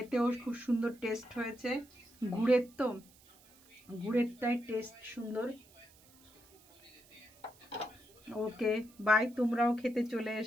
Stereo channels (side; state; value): right; noise; hiss, 26 dB below the sound